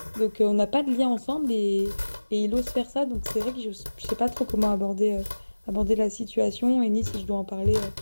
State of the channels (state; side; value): inverted; both; correlation -1.00